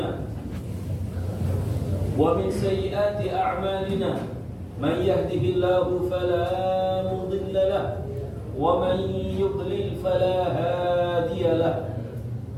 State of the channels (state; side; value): identical; both; correlation 1.00